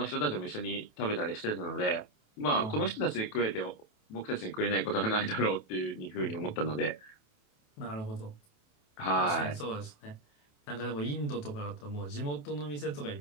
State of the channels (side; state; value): right; late; 28 ms